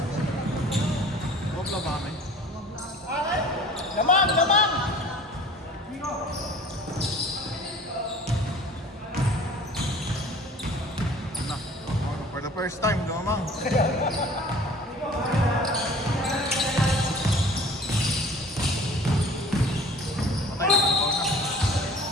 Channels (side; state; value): both; normal; correlation 0.47